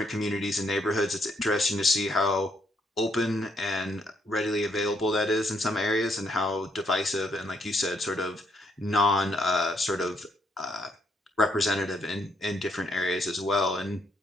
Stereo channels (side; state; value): both; normal; correlation 0.73